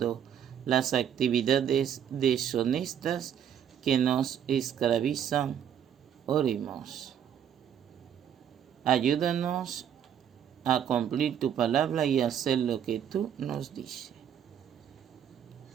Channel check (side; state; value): left; quieter; 9.1 dB